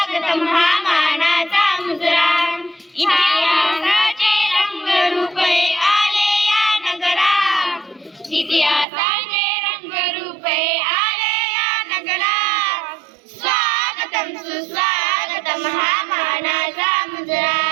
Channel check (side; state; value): left; drops out; at 8.8 s